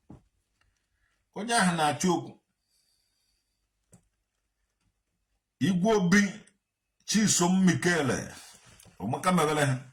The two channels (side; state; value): both; identical; correlation 1.00